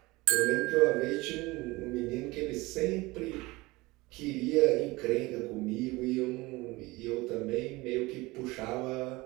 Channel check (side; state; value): left; quieter; 21.7 dB